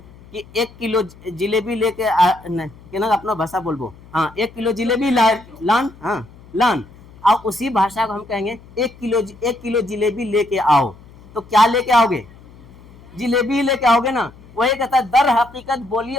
कि 1 किलो जिलेबी लेके अपना भाषा बोलबो, हाँ 1 किलो जिलेबी लान, हाँ लान, और उसी भाषा को हम कहेंगे 1 किलो जिलेबी लेके आओ, तो क्या लेके आओगे? जिलेबी लेके आओगे ना। वही कहता है दर हकीकत बोली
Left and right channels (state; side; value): noise; left; hum, 23 dB below the sound